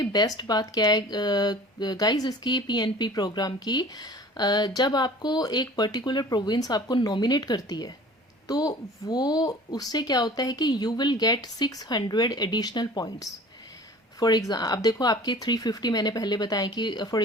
बेस्ट बात क्या है गाइस इसकी पीएनपी प्रोग्राम की, जब आपको एक पर्टिकुलर प्रोविंस आपको नॉमिनेट करती है, तो वो उससे क्या होता है कि you will get 600 additional points for example अब देखो आपके 350 मैंने पहले बताया कि फॉर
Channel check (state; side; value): normal; both; correlation 0.45